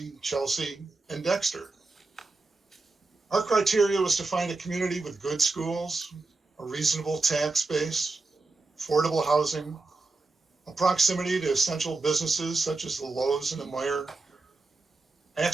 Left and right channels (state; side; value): quieter; left; 3.6 dB